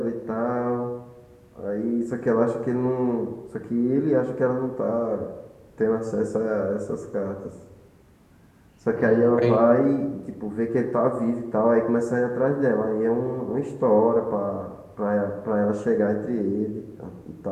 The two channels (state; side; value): identical; both; correlation 1.00